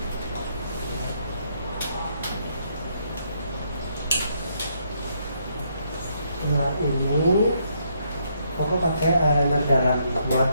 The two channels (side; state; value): both; inverted; correlation -0.74